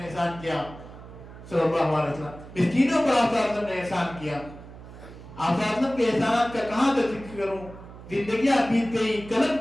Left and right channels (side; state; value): right; noise; hum, 16 dB below the sound